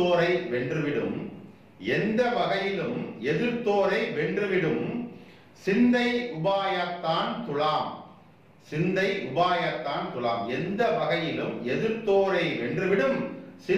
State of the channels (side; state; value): both; identical; correlation 1.00